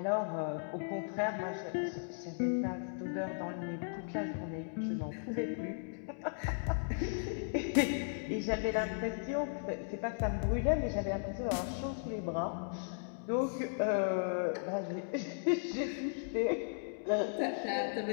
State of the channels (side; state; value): right; silent; digital silence